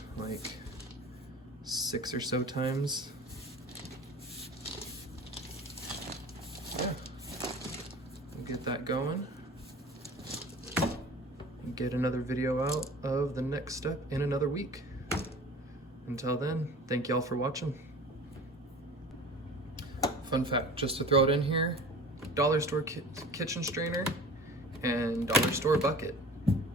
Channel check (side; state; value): both; normal; correlation 0.40